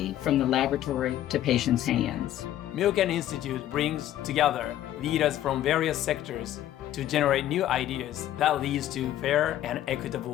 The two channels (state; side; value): quieter; right; 12.5 dB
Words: from the laboratory to patients' hands. Milken Institute brings together leaders from various sectors to generate new ideas that leads to fair and